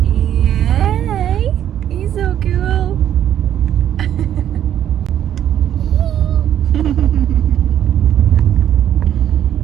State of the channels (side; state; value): left; quieter; 10.6 dB